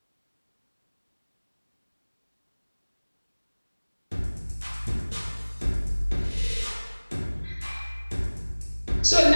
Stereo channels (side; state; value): both; inverted; correlation -1.00